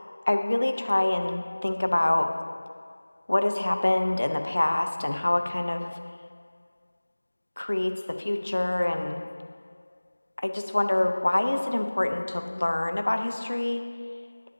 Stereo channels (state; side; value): inverted; both; correlation -1.00